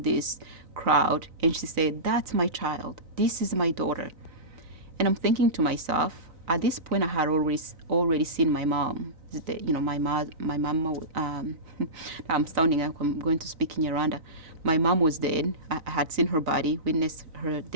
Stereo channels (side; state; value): left; late; 3.9 ms